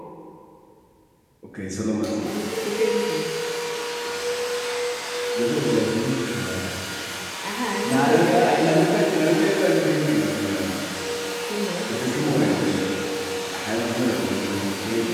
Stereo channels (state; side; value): identical; both; correlation 1.00